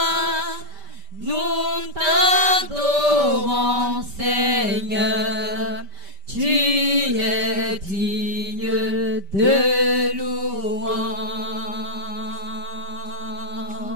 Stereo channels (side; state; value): left; late; 5.1 ms